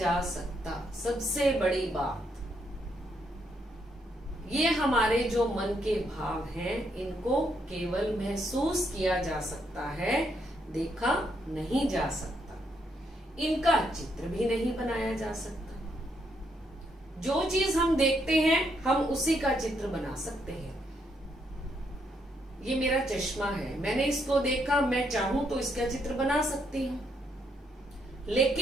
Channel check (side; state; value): both; normal; correlation 0.76